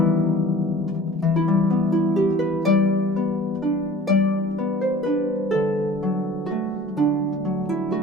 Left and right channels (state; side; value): normal; both; correlation 0.45